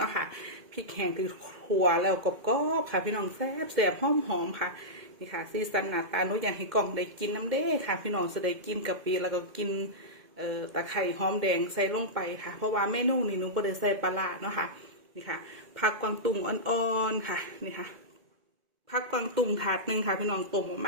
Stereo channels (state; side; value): late; left; 2.1 ms